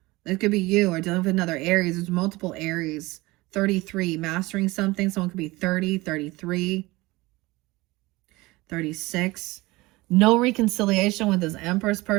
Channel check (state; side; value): quieter; left; 21.1 dB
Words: It could be you or dealing with another Aries. There's multiple Aries. 33, mastering something. Someone could be 30, 33, 36. No reconciliation with this Empress